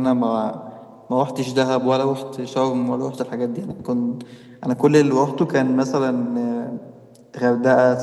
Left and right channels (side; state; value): both; identical; correlation 1.00